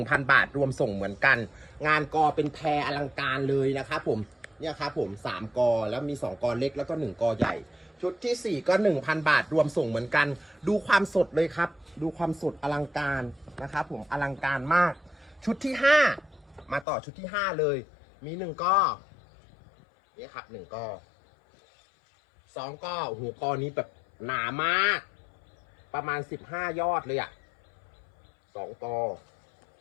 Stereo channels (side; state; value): right; drops out; at 16.9 s